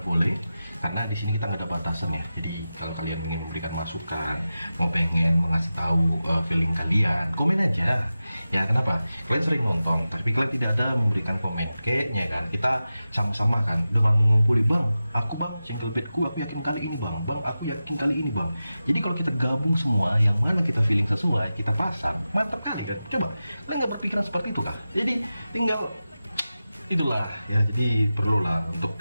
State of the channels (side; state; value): both; inverted; correlation -0.93